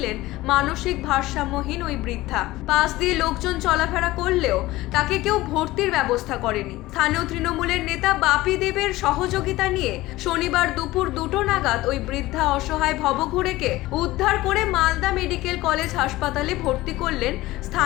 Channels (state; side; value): quieter; right; 18.1 dB